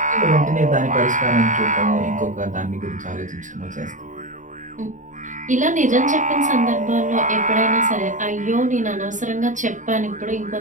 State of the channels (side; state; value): left; late; 0.37 ms